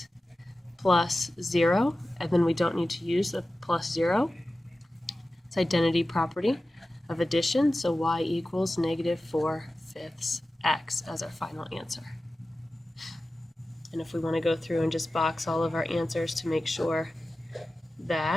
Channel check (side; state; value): both; normal; correlation 0.95